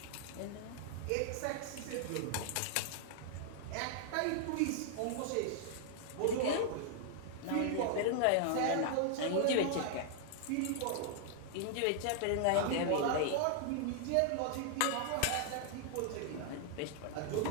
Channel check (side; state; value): both; different; correlation -0.01